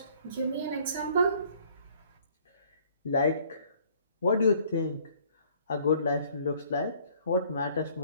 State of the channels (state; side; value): inverted; both; correlation -0.59